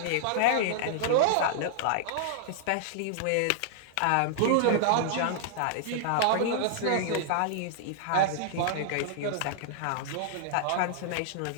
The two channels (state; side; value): different; both; correlation -0.01